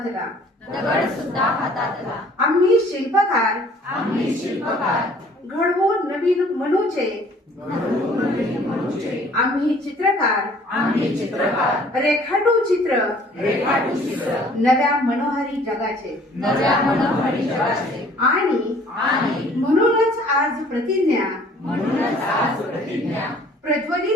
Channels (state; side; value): normal; both; correlation 0.55